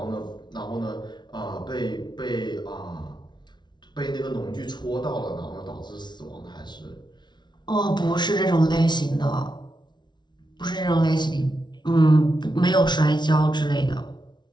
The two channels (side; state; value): right; late; 0.21 ms